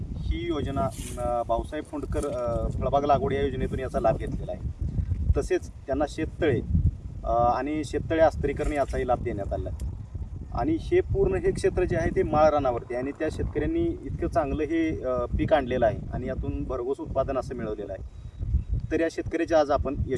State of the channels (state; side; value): identical; both; correlation 1.00